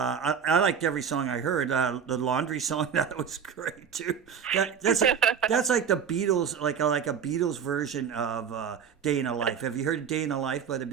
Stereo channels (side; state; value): left; quieter; 7.5 dB